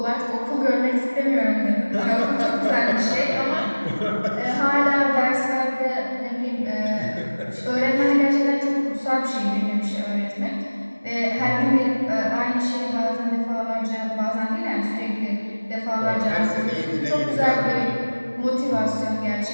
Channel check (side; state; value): both; inverted; correlation -1.00